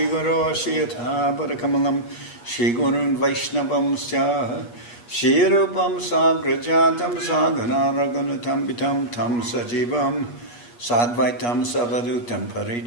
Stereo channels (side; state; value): right; late; 8.4 ms